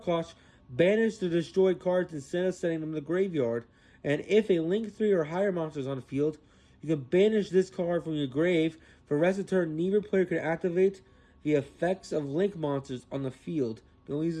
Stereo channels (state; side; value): identical; both; correlation 1.00